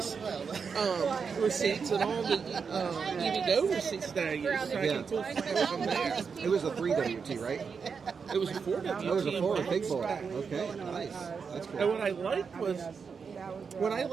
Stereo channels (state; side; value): quieter; left; 5.8 dB